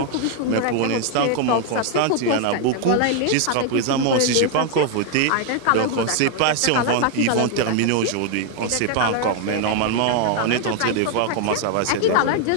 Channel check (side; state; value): both; different; correlation 0.00